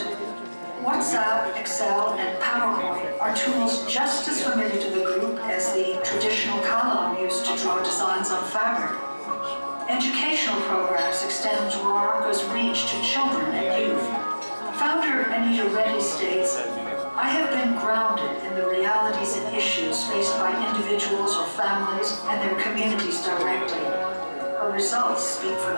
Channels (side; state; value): both; inverted; correlation -1.00